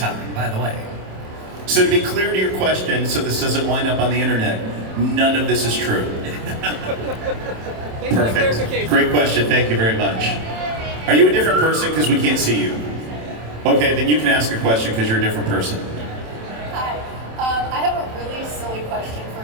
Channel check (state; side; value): late; left; 27 ms